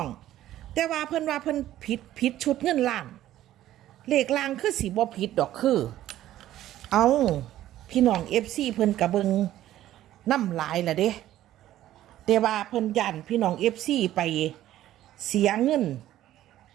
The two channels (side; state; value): left; quieter; 13.4 dB